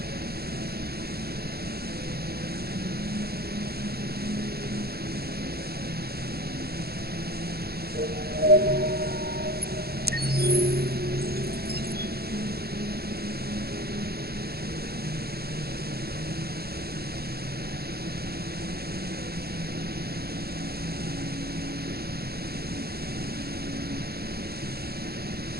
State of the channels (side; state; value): left; late; 0.46 ms